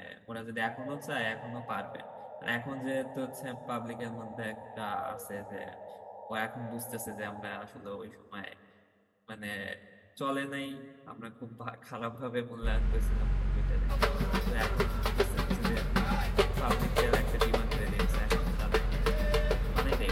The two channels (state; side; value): identical; both; correlation 1.00